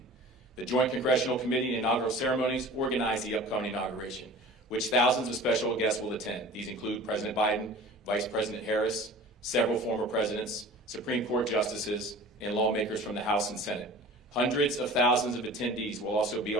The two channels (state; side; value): normal; both; correlation 0.41